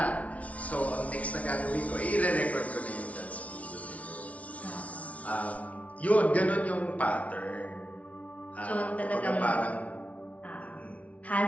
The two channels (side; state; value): right; late; 0.066 ms